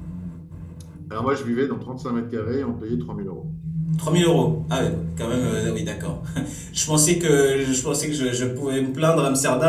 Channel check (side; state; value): both; identical; correlation 1.00